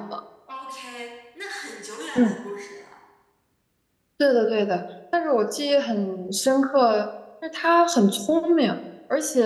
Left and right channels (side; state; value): both; identical; correlation 1.00